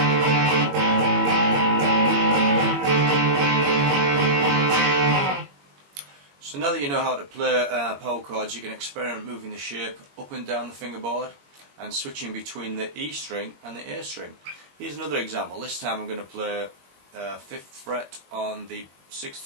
So now that you know how to play power chords, you can experiment moving the shape up and down the fingerboard and switching between the E string and the A string. Here's another example. This time I'm going to play 5th fret on the 6th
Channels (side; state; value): left; late; 21 ms